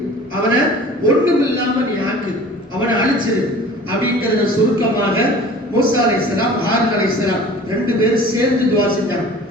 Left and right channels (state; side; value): normal; both; correlation 0.44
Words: அவனை ஒண்ணுமில்லாம நீ ஆக்கு, அவனை அழிச்சிரு அப்படிங்கறத சுருக்கமாக மூசா அலைஹிஸ்ஸலாம் ஹாரூன் அலைஹிஸ்ஸலாம் 2 பேரும் சேர்ந்து துஆ செஞ்சாங்க.